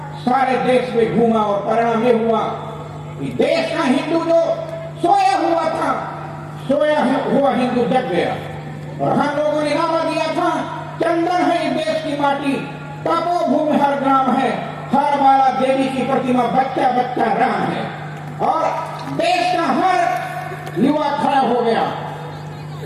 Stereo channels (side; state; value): both; identical; correlation 1.00